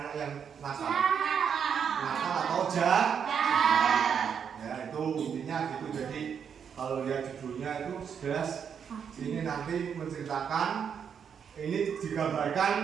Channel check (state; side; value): quieter; left; 7.4 dB